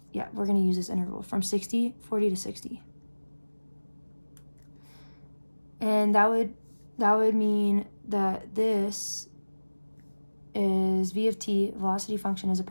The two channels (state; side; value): inverted; both; correlation -1.00